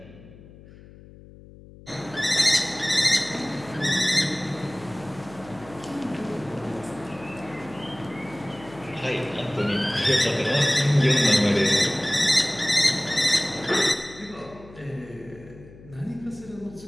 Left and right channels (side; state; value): left; noise; hum, 20 dB below the sound